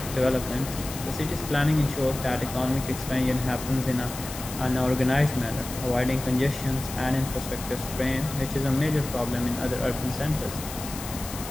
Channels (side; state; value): left; noise; hiss, 10 dB below the sound